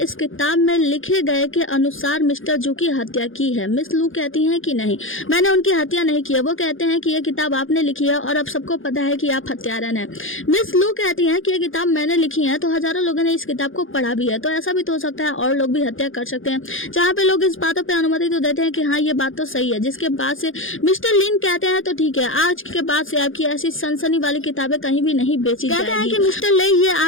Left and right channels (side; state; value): right; late; 0.58 ms